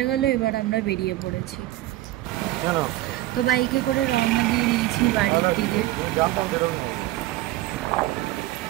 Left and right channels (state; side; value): quieter; left; 16.4 dB